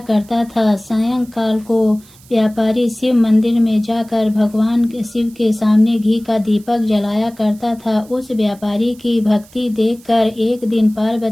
करता था। सायंकाल को व्यापारी शिव मंदिर में जाकर भगवान शिव के सामने घी का दीपक जलाया करता था। उस व्यापारी की भक्ति देखकर एक दिन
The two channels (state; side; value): noise; right; hiss, 26 dB below the sound